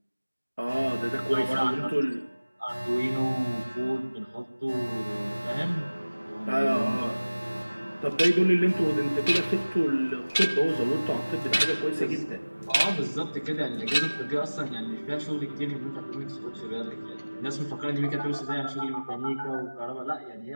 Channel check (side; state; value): both; inverted; correlation -1.00